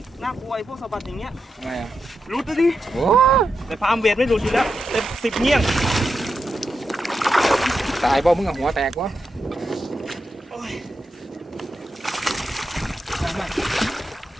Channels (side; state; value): both; normal; correlation 0.87